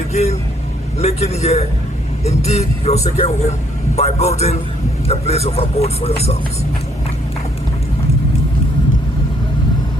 making here indeed your second home by building a place of abode for yourselves.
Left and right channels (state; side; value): normal; both; correlation 0.67